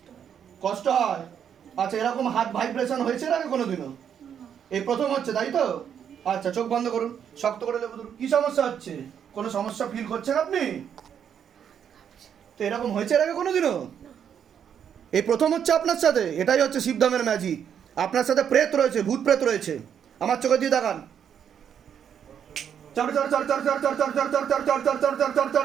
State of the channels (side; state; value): left; quieter; 8.4 dB